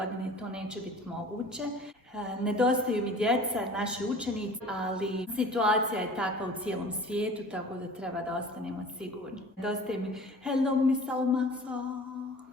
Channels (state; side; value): normal; both; correlation 0.43